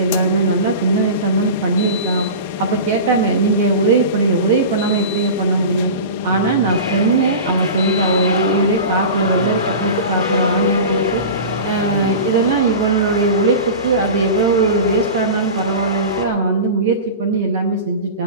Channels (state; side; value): inverted; both; correlation -0.31